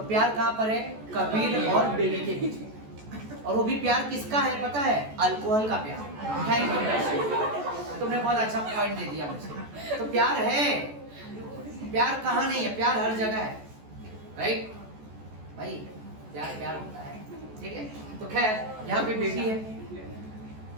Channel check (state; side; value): late; left; 14 ms